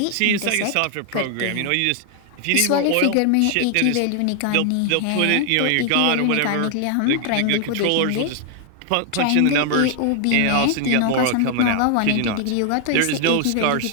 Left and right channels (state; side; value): different; both; correlation 0.00